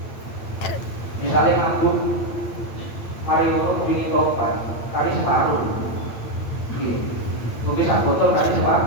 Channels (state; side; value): late; right; 8.7 ms